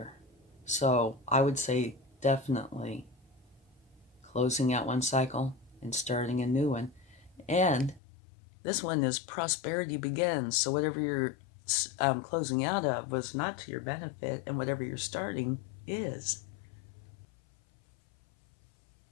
So I would say definitely closing out one cycle and starting a new one. And this one is prosperity begins. So whatever you're closing out of was not to your benefit, and whatever you're starting is.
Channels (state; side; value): drops out; right; at 8.0 s